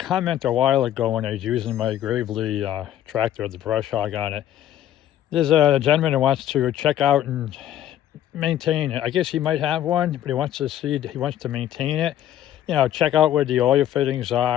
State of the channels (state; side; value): quieter; right; 11.7 dB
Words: a while ago when I was using my Gravely tractor with the brush hog on it. There's a gentleman who wants to check out and maintain it. I guess he might have one, but he wants to maintain it. You know, check out where the oil fittings